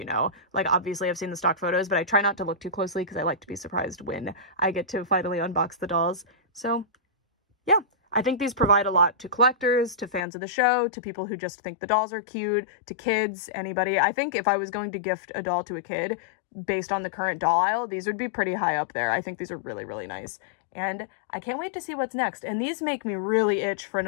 know. Like, obviously I've seen the stock photos, but I try not to look too closely because I like to be surprised when I get to finally unbox the dolls. So yeah, I think these provide a lot to collectors, to fans of the show, to people who just think the dolls are cute, to kids, anybody. I think if I was going to gift a doll to a kid based on the current doll aisle, these would be pretty high up there. I think these are really, really nice. And I can't wait to see what's next. And these make me really itch for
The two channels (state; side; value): drops out; right; at 10.2 s